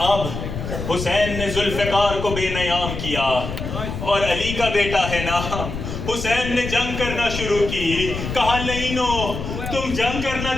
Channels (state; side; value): noise; left; rumble, 6 dB below the sound